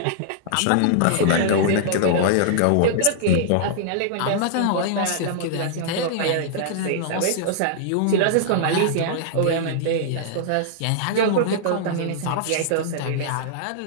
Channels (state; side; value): different; both; correlation -0.01